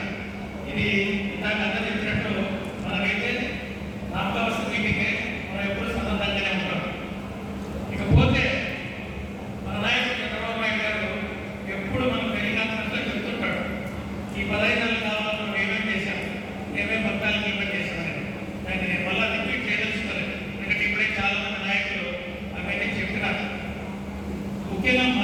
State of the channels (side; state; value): both; identical; correlation 1.00